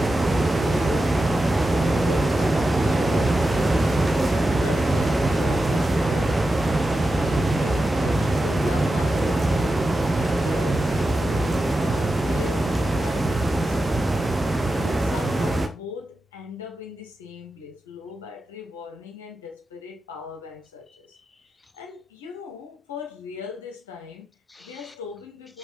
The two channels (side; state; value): both; normal; correlation 0.91